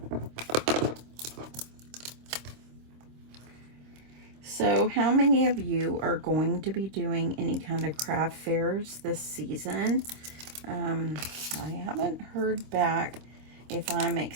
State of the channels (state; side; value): late; left; 25 ms